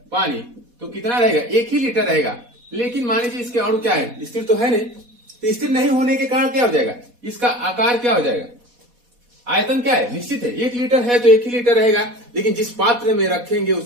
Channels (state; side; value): late; left; 4.1 ms